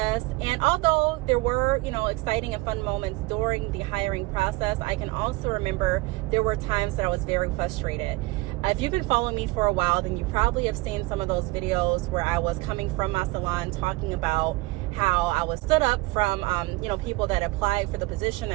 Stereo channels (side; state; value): left; quieter; 22.0 dB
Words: And although there were, exciting and fun moments during the hiring process, I can also remember there were times that I was very frustrated. If you've been following me for a while, then you probably have seen some of those videos where I was coming from my salon talking about how I was stood up from, people that applied for the position